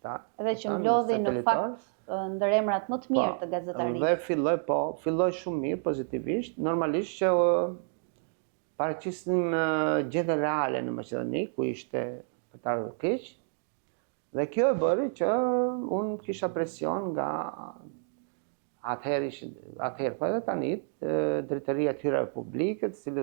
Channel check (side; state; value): left; silent; 58 dB below the other